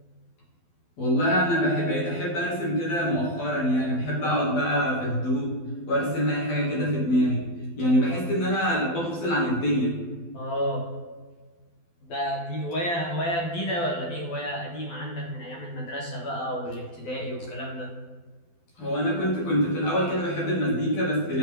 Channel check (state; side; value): late; right; 12 ms